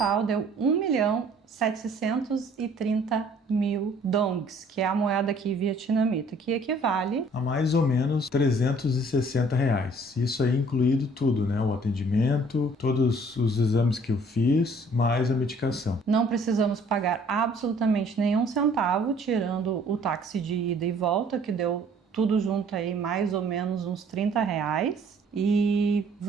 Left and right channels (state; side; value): normal; both; correlation 0.57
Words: deu 1.730.000 dongs, que é a moeda aqui vietnamita, que equivale A mais ou menos R$360. Isso aí incluído tudo, né? O atendimento, todos os exames que eu fiz, mais a medicação. Não precisamos pagar absolutamente nenhum centavo, tirando o táxi de ida e volta, que deu tudo junto aí mais ou menos uns R$30. E